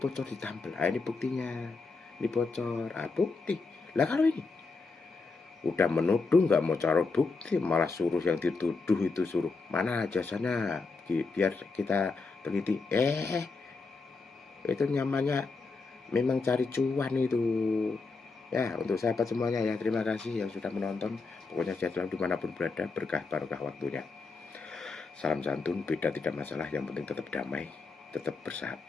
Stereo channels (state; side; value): quieter; right; 4.1 dB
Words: ditampil, ini buktinya, ini bocor, bukti. Lah kalau ini udah menuduh, nggak mau cari bukti, malah suruh yang dituduh itu suruh mana jasanya biar kita teliti. Itu namanya memang cari cuan itu. Ya, untuk sahabat semuanya ya, terima kasih yang sudah menonton. Pokoknya sehat selalu dimanapun berada, berkah barokah waktunya. Salam santun, beda tidak masalah, yang penting tetap damai, tetap